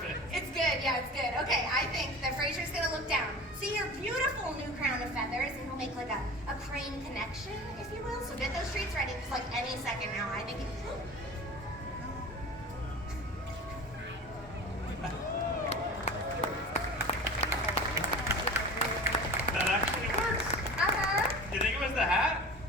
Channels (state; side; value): normal; both; correlation 0.37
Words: It's good, yeah, it's good. Okay, I think that Fraser's gonna look down, see your beautiful new make like a crane connection, if you will. So get those treats ready, because like any second now, I think That actually works. Uh-huh. You think it was the hat?